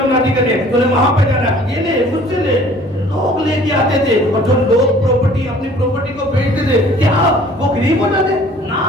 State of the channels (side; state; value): both; normal; correlation 0.52